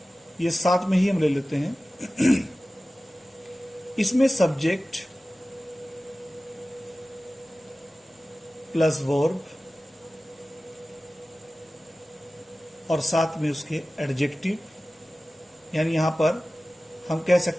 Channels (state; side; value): normal; both; correlation 0.96